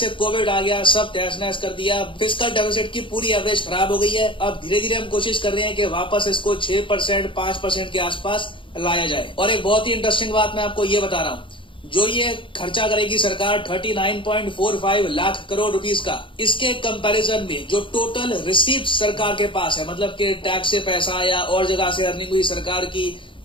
कोविड आ गया, सब तहस नहस कर दिया, फिस्कल डेफिसिट की पूरी एवरेज खराब हो गई है। अब धीरे धीरे हम कोशिश कर रहे हैं कि वापस इसको 6% 5% के आसपास लाया जाए। और एक बहुत ही इंटरेस्टिंग बात मैं आपको ये बता रहा हूँ, जो ये खर्चा करेगी सरकार 39.45 लाख करोड़ रुपीस का, इसके कंपैरिजन में जो टोटल रिसीव्ड सरकार के पास है, मतलब कि टैक्स से पैसा या और जगह से अर्निंग हुई सरकार की,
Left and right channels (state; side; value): late; right; 0.25 ms